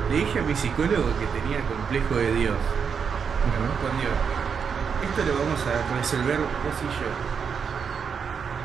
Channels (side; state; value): left; quieter; 6.5 dB